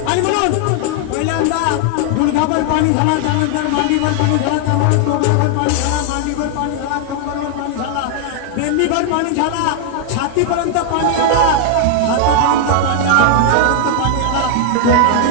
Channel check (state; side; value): different; both; correlation 0.00